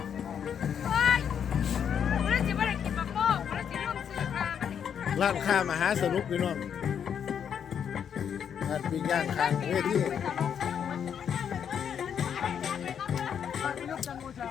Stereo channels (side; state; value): right; quieter; 8.1 dB